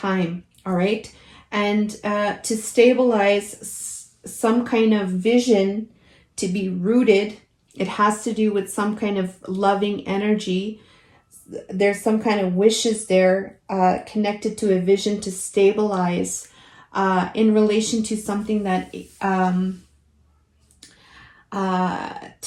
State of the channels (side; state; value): both; identical; correlation 1.00